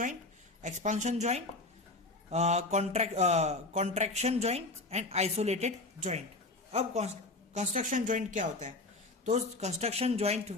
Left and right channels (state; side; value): quieter; right; 3.0 dB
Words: expansion joint, contraction joint and isolated joint. अब कंस्ट्रक्शन जॉइंट क्या होता है? तो कंस्ट्रक्शन जॉइंट